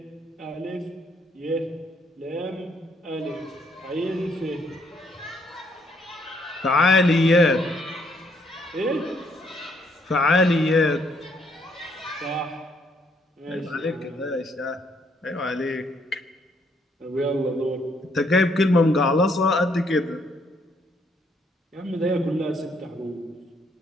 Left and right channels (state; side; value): normal; both; correlation 0.70